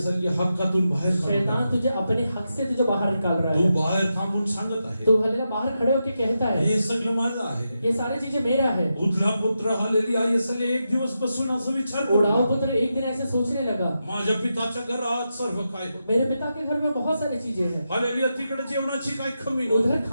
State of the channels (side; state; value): both; inverted; correlation -0.87